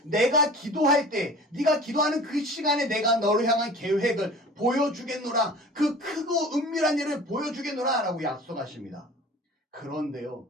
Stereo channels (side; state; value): both; normal; correlation 0.42